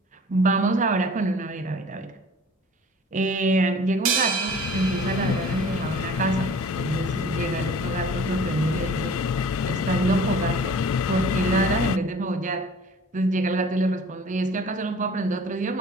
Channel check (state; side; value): normal; both; correlation 0.47